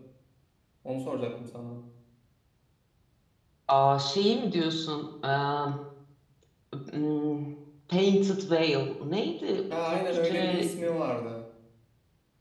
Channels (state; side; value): identical; both; correlation 1.00